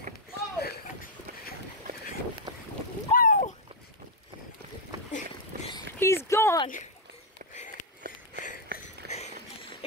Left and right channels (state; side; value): normal; both; correlation -0.01